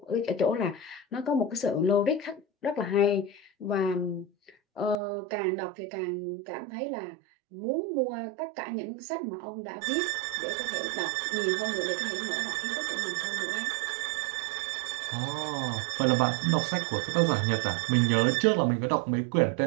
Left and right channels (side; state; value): left; drops out; at 5.0 s